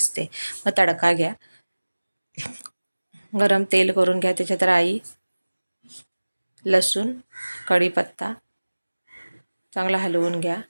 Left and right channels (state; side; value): inverted; both; correlation -1.00